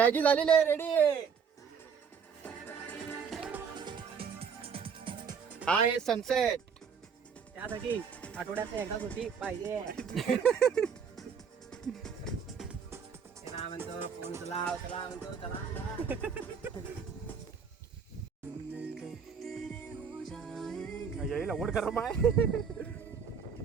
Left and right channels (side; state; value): left; quieter; 6.5 dB